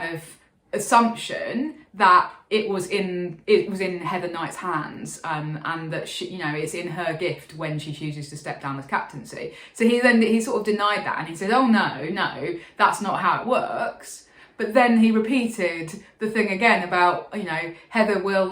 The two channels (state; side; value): identical; both; correlation 1.00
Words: of assumption that it was in Heather Knight's hands, and that she, it's in her gift when she chooses to step down as captaincy. So he sort of denied that, and he said, "Oh no, that's not how it works." But then he repeated the thing again about Heather